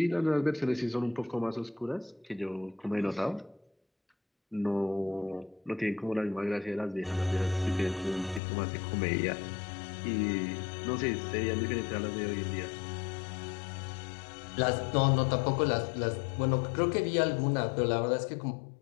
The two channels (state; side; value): drops out; right; at 8.4 s